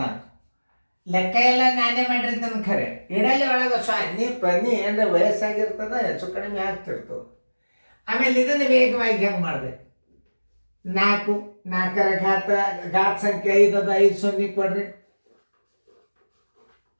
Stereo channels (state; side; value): inverted; both; correlation -1.00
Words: ಲೆಕ್ಕ ಎಲ್ಲ ನಾನೇ ಮಾಡಿರ್ತಾನೆ. ಖರೆ ಇಡಲಿ ಒಳಗೆ ಸೊನ್ನೆ ಪನ್ನಿ ಅಂದರೆ ವಯಸ್ಸಾಗಿರ್ತದೆ, ಹೆಚ್ಚು ಕಡಿಮೆ ಆಗ್ತಿರ್ತದೆ. ಆಮೇಲೆ ಇದನ್ನು ವೇಗವಾಗಿ ಹೆಂಗೆ ಮಾಡ್ಬೇಕು? 4 4ರ ಘಾತ ಸಂಖ್ಯೆ 5 ಅದ. 5 ಸೊನ್ನೆ ಕೊಡ್ರಿ.